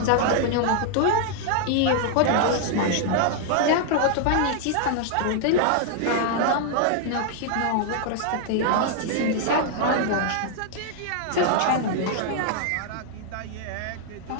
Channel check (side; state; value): both; different; correlation 0.00